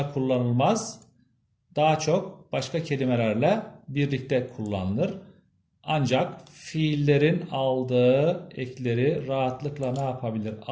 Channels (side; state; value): both; identical; correlation 1.00